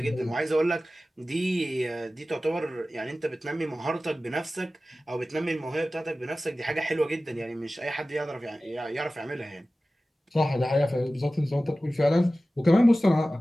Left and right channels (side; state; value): both; normal; correlation 0.96